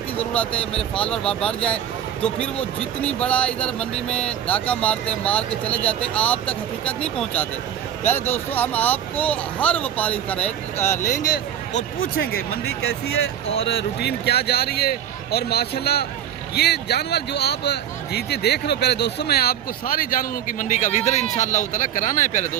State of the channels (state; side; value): quieter; left; 10.1 dB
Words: ज़रूरत है, मेरे फॉलोअर बढ़ जाए तो फिर वो जितनी बड़ा इधर मंडी में डाका मारते हैं, मार के चले जाते हैं, आप तक हकीकत नहीं पहुंचाते। प्यारे दोस्तों, हम आपको हर व्यापारी का रेट लेंगे और पूछेंगे मंडी कैसी है और रूटीन क्या जा रही है। और माशाल्लाह ये जानवर जो आप जीते देख रहे हो प्यारे दोस्तों, मैं आपको सारे जानवरों की मंडी का विज़िट इंशाअल्लाह ताला कराना है प्यारे